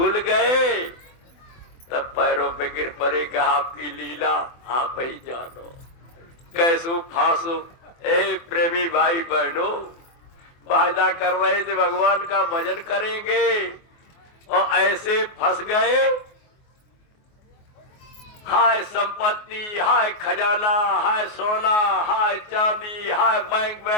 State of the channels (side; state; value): right; late; 24 ms